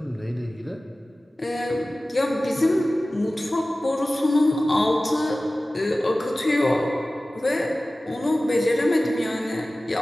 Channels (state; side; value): normal; both; correlation 0.97